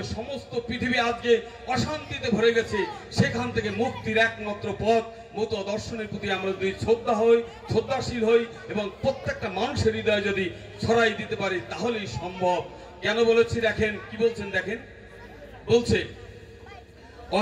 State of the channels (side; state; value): both; identical; correlation 1.00